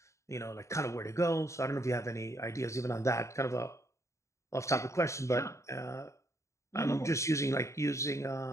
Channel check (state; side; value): late; right; 0.14 ms